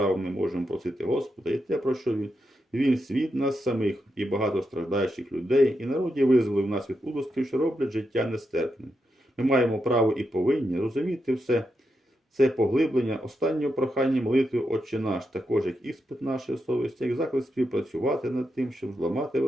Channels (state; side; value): normal; both; correlation 0.85